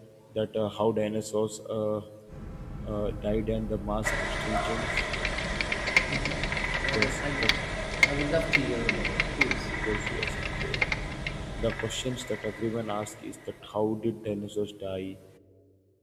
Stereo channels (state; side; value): identical; both; correlation 1.00